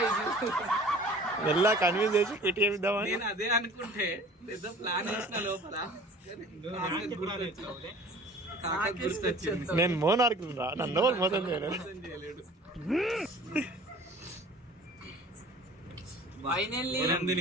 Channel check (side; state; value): both; normal; correlation 0.46